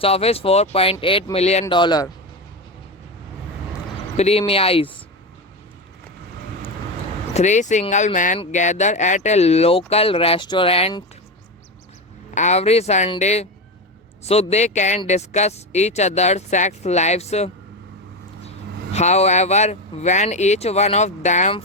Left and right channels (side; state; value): both; normal; correlation 0.17